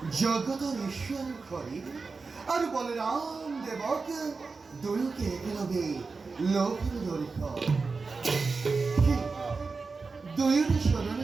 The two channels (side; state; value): left; quieter; 4.3 dB